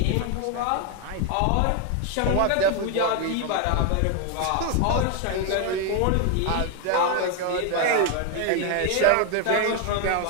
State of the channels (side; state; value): both; different; correlation 0.01